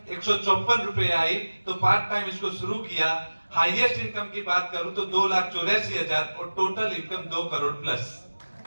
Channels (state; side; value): inverted; both; correlation -1.00